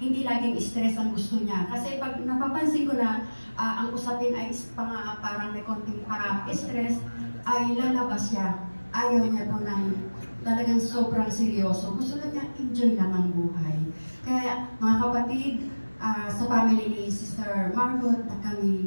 laging stress ang gusto niya. Kasi pag napapansin ko na ang usapin ay parang may konting stress, ay lalabas siya. Ayaw niya po ng talagang sobrang seryoso. Gusto na niya enjoy lang ang buhay. Kaya mga kapatid, sa family ni Sister Margot, na kami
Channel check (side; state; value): both; inverted; correlation -1.00